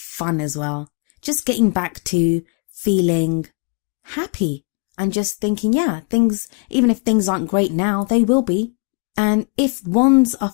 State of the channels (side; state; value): right; quieter; 35.8 dB